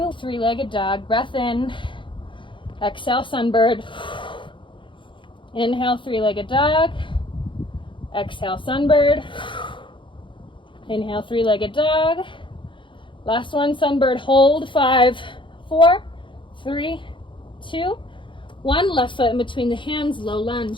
three-legged dog. Breath in, exhale, sunbird. Inhale, three-legged dog. Exhale, sunbird. Inhale, three-legged dog. Last one, sunbird, hold. 5, 4, 3, 2, 1. Left foot in between the hands, low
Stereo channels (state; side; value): late; right; 0.24 ms